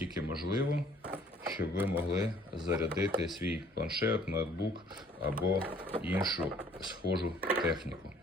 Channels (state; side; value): normal; both; correlation 0.58